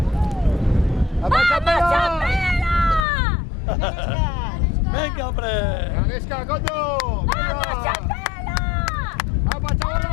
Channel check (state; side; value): drops out; right; at 3.1 s